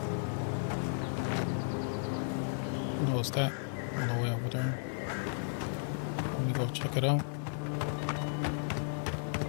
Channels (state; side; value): silent; right; 55 dB below the other